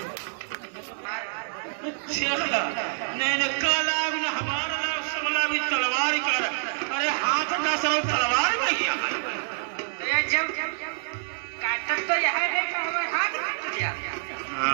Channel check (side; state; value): left; silent; 60 dB below the other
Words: नहीं काला भी न हमारा लाभ सबला भी तलवार ही कर। अरे हाथ का सर तलवार में गया। जब काटत तो यह है कि हमारे हाथ काट दिया।